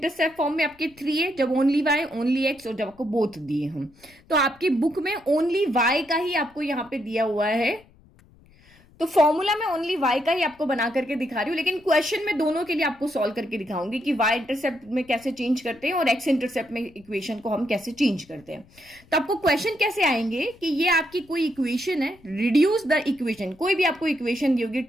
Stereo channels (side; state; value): left; noise; rumble, 28 dB below the sound